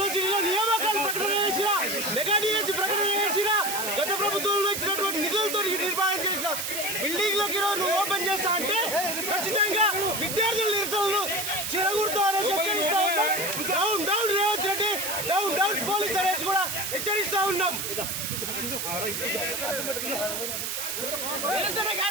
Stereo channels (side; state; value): right; noise; hiss, 3 dB below the sound